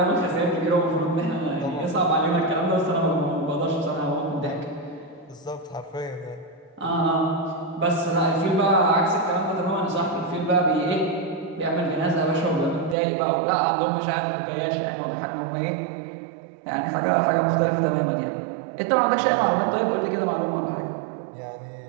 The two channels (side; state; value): left; drops out; at 13.0 s